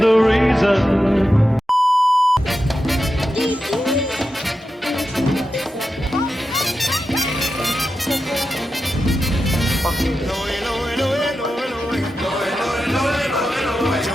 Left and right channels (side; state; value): both; normal; correlation 0.90